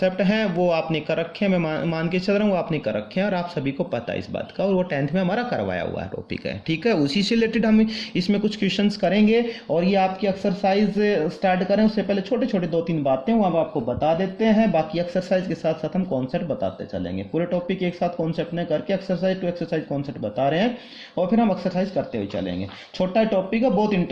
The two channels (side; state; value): both; identical; correlation 1.00